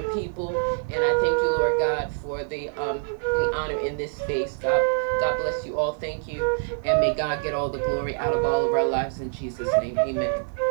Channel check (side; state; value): left; silent; digital silence